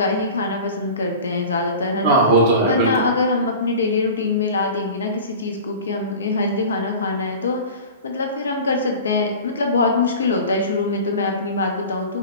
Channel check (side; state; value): both; inverted; correlation -0.36